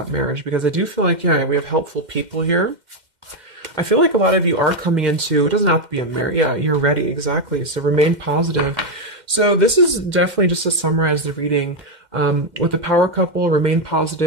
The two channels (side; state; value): left; late; 2.1 ms